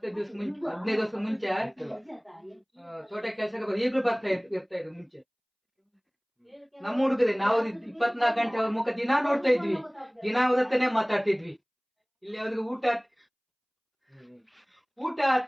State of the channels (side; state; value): both; identical; correlation 1.00